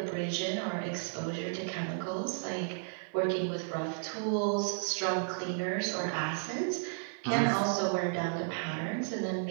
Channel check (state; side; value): silent; left; 56 dB below the other